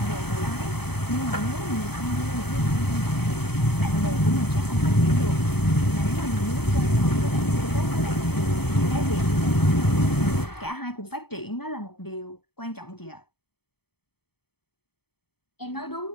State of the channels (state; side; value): late; right; 0.97 ms